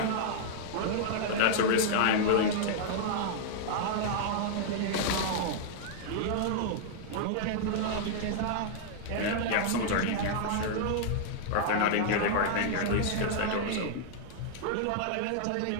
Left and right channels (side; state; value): both; different; correlation -0.01